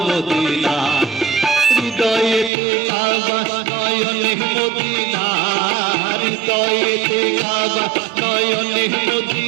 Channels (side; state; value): left; drops out; at 2.5 s